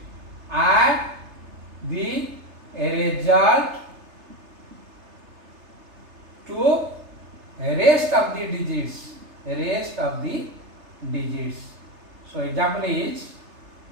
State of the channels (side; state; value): left; late; 3.3 ms